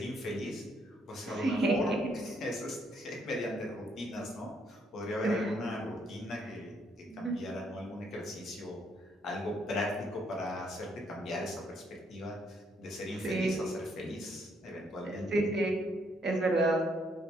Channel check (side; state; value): both; normal; correlation 0.71